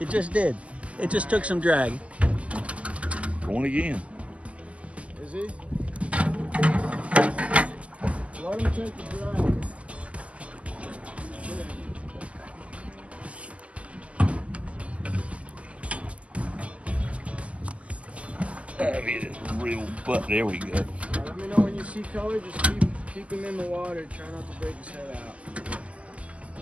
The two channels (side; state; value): left; late; 0.063 ms